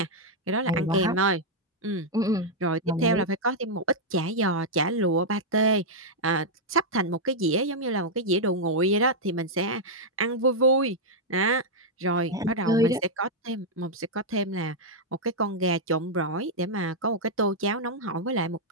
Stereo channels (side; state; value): both; normal; correlation -0.04